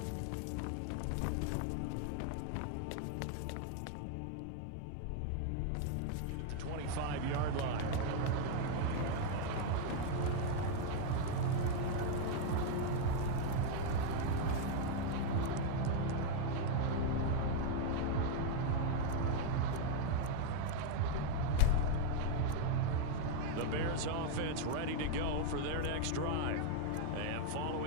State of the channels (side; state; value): both; different; correlation 0.01